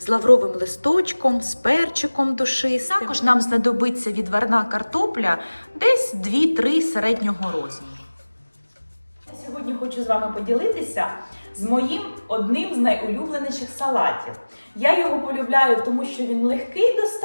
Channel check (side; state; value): both; inverted; correlation -1.00